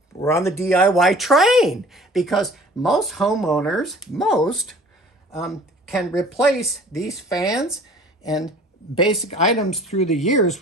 we're on the DIY train, because most homeowners, can replace these fans and basic items through the years,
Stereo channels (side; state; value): both; normal; correlation 0.48